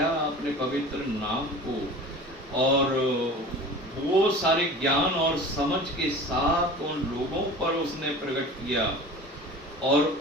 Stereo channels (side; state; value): both; normal; correlation 0.39